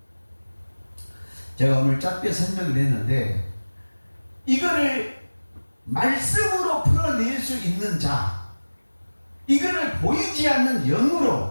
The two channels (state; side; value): inverted; both; correlation -1.00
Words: 제가 오늘 짧게 설명을 했는데 이거를 말씀으로 풀어낼 수 있는 자, 이거를 보이지 않는